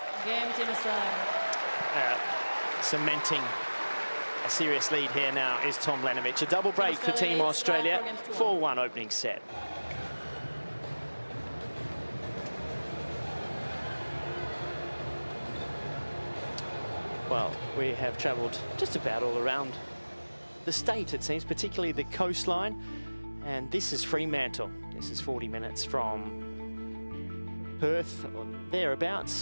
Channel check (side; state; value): both; inverted; correlation -1.00